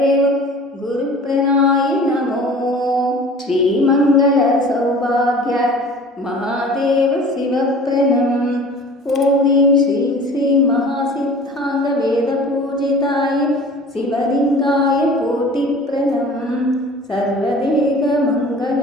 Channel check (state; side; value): normal; both; correlation 0.44